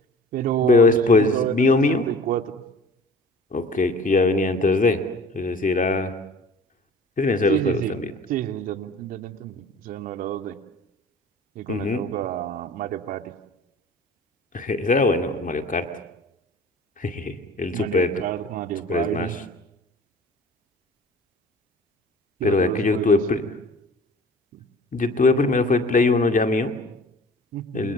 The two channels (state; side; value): normal; both; correlation 0.45